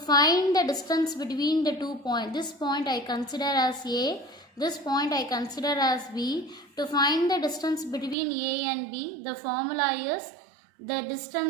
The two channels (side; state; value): left; drops out; at 8.2 s